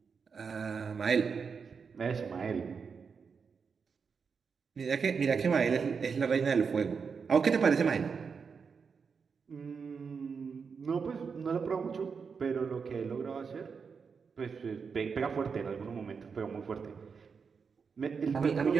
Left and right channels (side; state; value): left; quieter; 5.7 dB